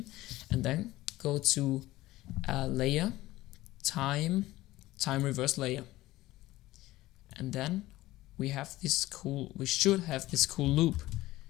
and then go to layer, time reverse layer, and then we should have this cool loop.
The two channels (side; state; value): right; quieter; 17.2 dB